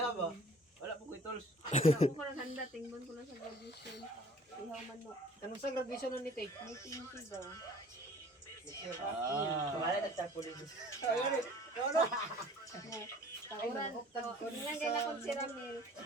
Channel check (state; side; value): normal; both; correlation 0.50